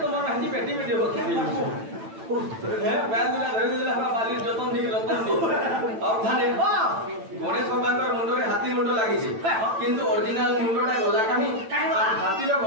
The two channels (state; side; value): late; left; 9.0 ms